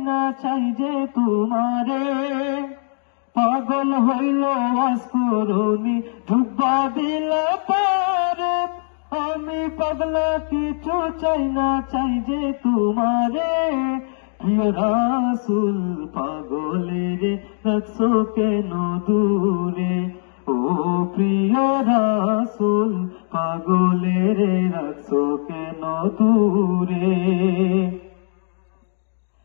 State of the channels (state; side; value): silent; right; digital silence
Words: না চাই যে তোমারে। পাগল হইল আসকুরুনি জুব্বা দিলা পারে, আমি পাগলা কিছু চাই না চাই যে তোমারে। প্রিয় রাসূল পাগলের রাখছো কেন দূরে, ও প্রিয় রাসূল পাগলের রাখছো কেন দূরে।